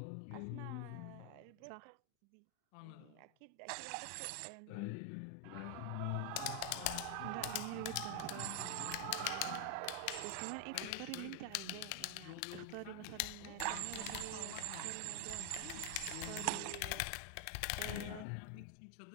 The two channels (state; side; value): different; both; correlation 0.00